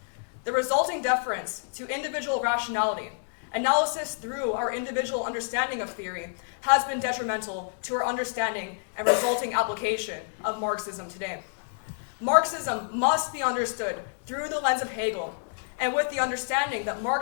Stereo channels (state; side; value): silent; right; digital silence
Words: The resulting deference to individual rationality, analysis through our individual understanding of theory, has been detrimental to our understanding and resulting application of Marxism today. Marxism must be understood through the lens of Hegel, and with the understanding that